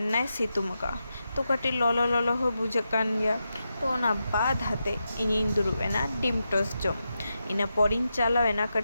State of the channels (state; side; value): inverted; both; correlation -0.88